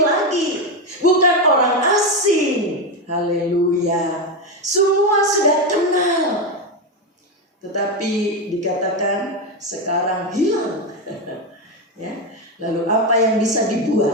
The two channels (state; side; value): normal; both; correlation 0.10